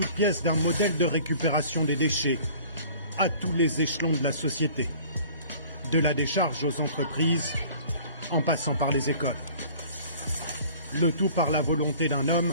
pièces d'un modèle de récupération des déchets à tous les échelons de la société, de la décharge aux entreprises, en passant par les écoles. Le tout par la volonté d'un homme,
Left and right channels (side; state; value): both; inverted; correlation -0.49